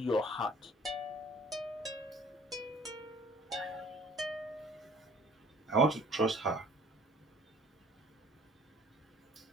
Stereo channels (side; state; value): both; normal; correlation 0.54